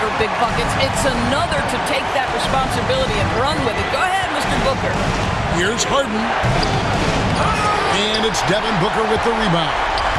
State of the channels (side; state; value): both; identical; correlation 1.00